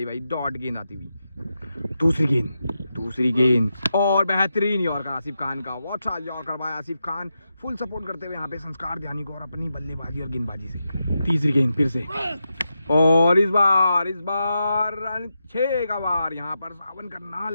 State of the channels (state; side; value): inverted; both; correlation -0.87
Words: भाई, डॉट गेंद आती हुई। दूसरी गेंद, और बेहतरीन यॉर्कर आसिफ खान का, वॉट शॉट यॉर्कर भाई आसिफ खान, फुल सपोर्ट करते हुए यहाँ पे संस्कार ध्यानी को और अपनी बल्लेबाजी और गेंदबाजी से। तीसरी गेंद फिर से, और इस बार रन 6 का वार यहाँ पर सावन